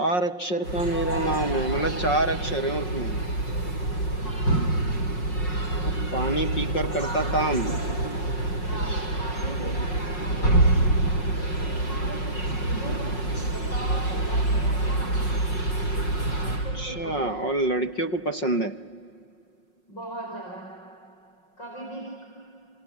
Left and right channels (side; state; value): right; late; 5.5 ms